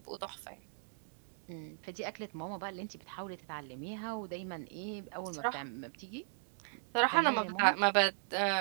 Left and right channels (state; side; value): silent; left; digital silence